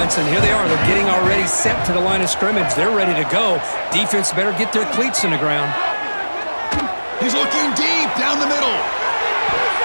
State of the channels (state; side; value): inverted; both; correlation -1.00